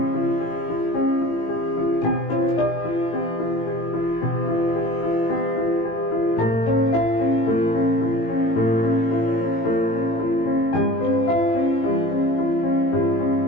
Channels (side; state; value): right; late; 18 ms